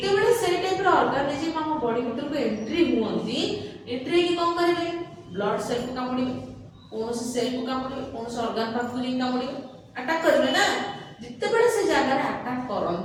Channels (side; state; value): both; identical; correlation 1.00